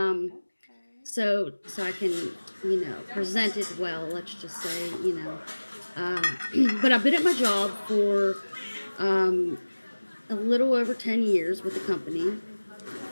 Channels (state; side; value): inverted; both; correlation -1.00